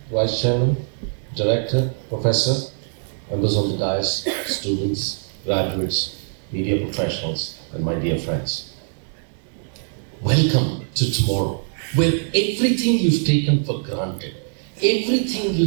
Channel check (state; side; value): silent; left; digital silence